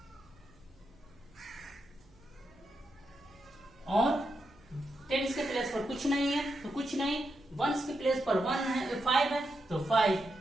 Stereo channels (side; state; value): right; noise; hum, 29 dB below the sound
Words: कुछ नहीं है तो कुछ नहीं, वंस के प्लेस पर 1 है, 5 है तो 5।